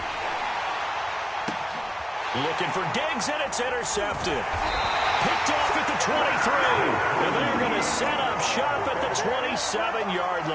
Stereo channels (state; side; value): identical; both; correlation 1.00